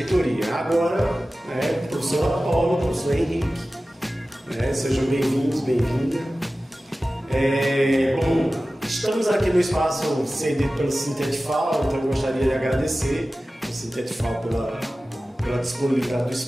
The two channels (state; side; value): normal; both; correlation 0.96